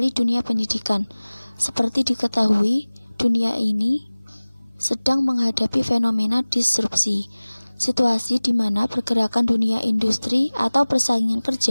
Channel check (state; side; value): inverted; both; correlation -0.99